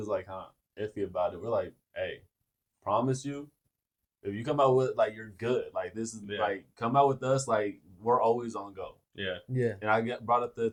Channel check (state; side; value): identical; both; correlation 1.00